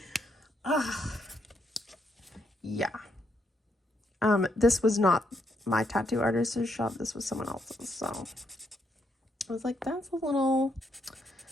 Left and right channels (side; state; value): both; normal; correlation 0.76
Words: Yeah. This was not my tattoo artist's shop. This was someone else's. So I was like, that's a little